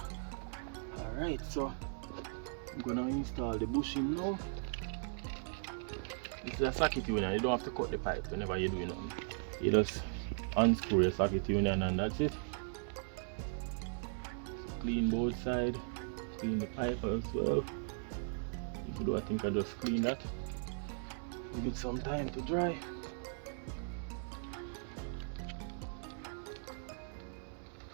Alright, so I'm gonna install the bushing now. This is a socket union. You don't have to cut the pipe whenever you're doing it. You just unscrew the socket union and that's it. Clean both sides, clean the pipe as well. I think I just clean that. Give it some time to dry.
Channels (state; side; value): silent; left; digital silence